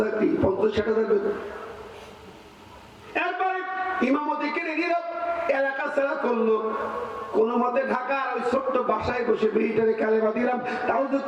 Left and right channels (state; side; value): identical; both; correlation 1.00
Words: 50-60 হাজার বেতন। এরপরে ইমামতি কিনে দিল, এলাকা ছাড়া করলো, কোন মতে ঢাকার ওই ছোট্ট বাসায় বসে মেয়েটারে কালেমা দিলাম, তাও যে